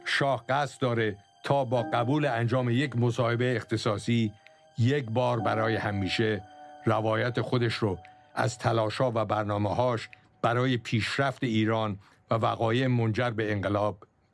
شاه قصد داره تا با قبول انجام یک مصاحبه اختصاصی یک بار برای همیشه روایت خودش رو از تلاش‌ها و برنامه‌هاش برای پیشرفت ایران و وقایع منجر به انقلاب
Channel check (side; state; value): both; identical; correlation 1.00